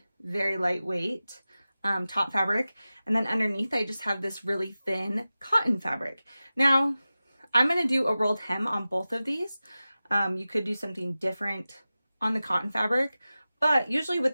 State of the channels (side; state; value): both; inverted; correlation -0.96